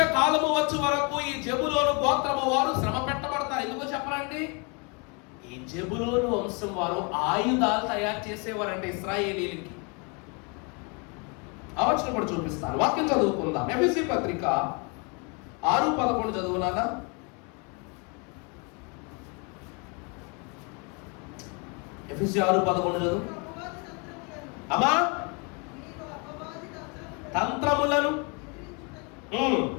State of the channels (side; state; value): right; quieter; 33.1 dB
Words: వచ్చే వరకు ఈ జెబులోను గోత్రము వారు శ్రమ పెట్టబడతారు. ఎందుకో చెప్పరండి? ఈ జెబులోను వంశం వారు ఆయుధాలు తయారు చేసేవారంటే ఇశ్రాయేలీలకి. ఆ వచనం కూడా చూపిస్తాను. వాక్యం చదువుకుందాం. ఎఫెసీ పత్రిక 6:11 చదువునానా? ఎఫెసీ 6:11 చదువు అమ్మా. తంత్రములను